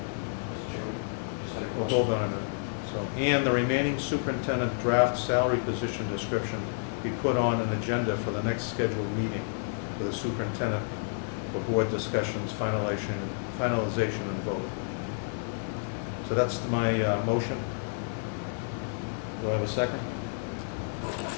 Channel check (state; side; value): silent; right; digital silence